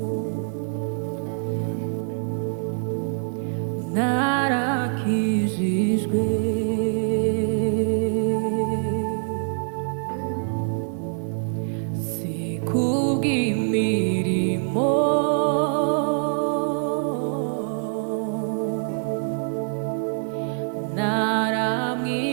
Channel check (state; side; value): silent; left; digital silence